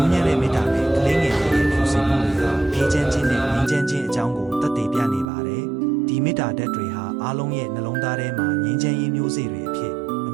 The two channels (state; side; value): drops out; left; at 5.2 s